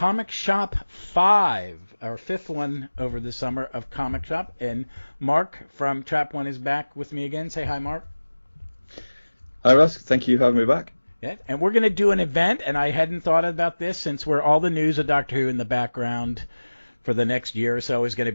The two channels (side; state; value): both; inverted; correlation -1.00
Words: Shop 5, our fifth one over the summer of Comic Shop. And Mark from Trap One is back with me again. Say hi, Mark. Hi, Russ. Thank you for having me back. Yeah, and we're going to do an event, and I hadn't thought about this since we're all the news of Doctor Who in the background for the next year or so is going to